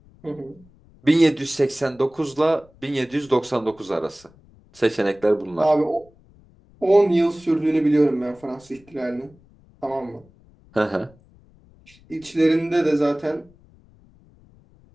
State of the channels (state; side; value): noise; left; rumble, 28 dB below the sound